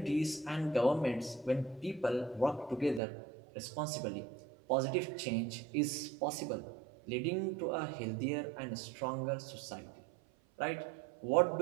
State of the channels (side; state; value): left; drops out; at 3.0 s